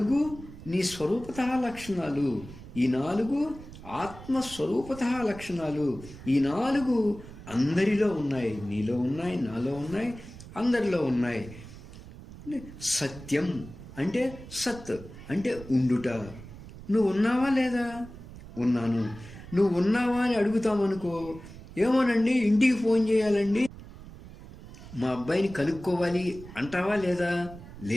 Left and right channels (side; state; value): right; noise; rumble, 16 dB below the sound